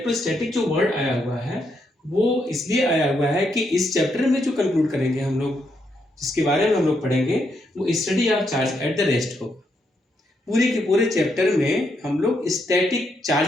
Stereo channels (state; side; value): normal; both; correlation 0.78